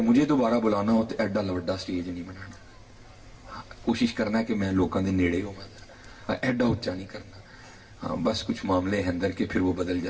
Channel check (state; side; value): identical; both; correlation 1.00